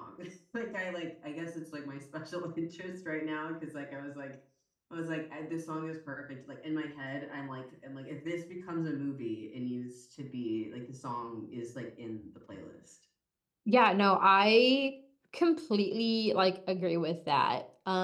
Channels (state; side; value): identical; both; correlation 1.00